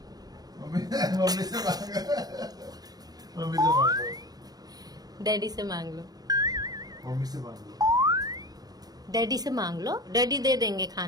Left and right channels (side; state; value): left; late; 0.19 ms